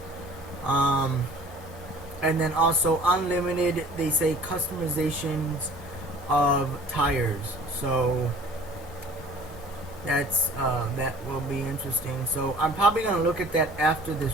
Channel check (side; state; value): both; normal; correlation 0.48